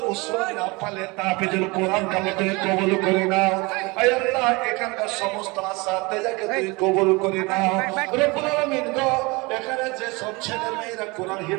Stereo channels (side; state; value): left; quieter; 25.5 dB